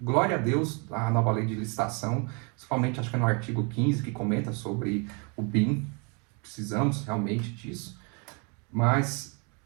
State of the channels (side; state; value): left; quieter; 33.9 dB